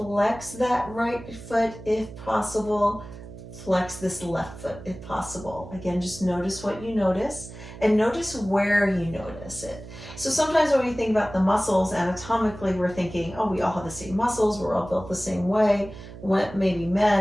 that right foot if possible. Flex this left foot if possible. Again, just notice what you notice and notice where you notice it. So sometimes when we think about the muscles anatomically, we're thinking, oh, we all have the same muscles, we're all built the same way. Maybe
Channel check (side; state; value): right; noise; hum, 15 dB below the sound